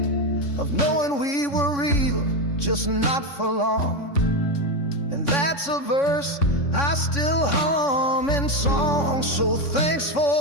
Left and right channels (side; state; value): right; late; 3.6 ms